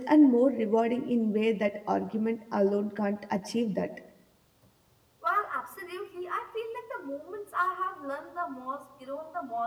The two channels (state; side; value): identical; both; correlation 1.00